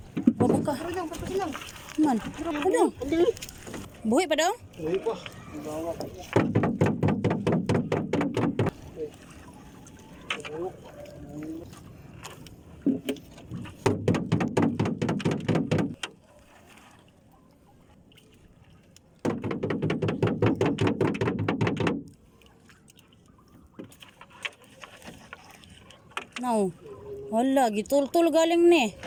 Babaka. Man. Padong. Buhi pa dong? Uy pa. No. Wala, gitul-tul galing ni.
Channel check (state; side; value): identical; both; correlation 1.00